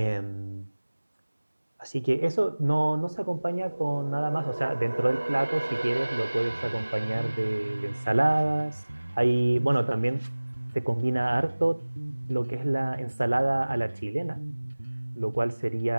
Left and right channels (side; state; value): both; inverted; correlation -1.00